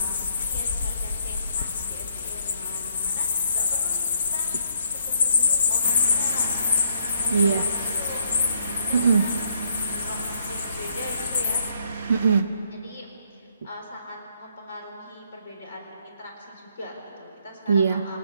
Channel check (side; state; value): both; inverted; correlation -0.69